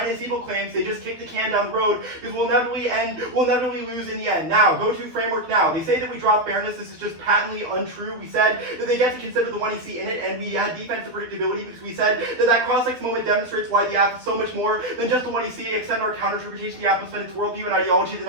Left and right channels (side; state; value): left; late; 12 ms